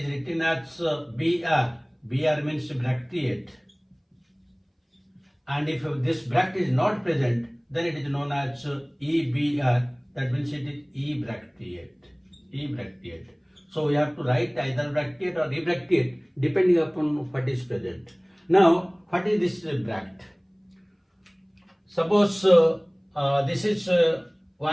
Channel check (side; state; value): both; identical; correlation 1.00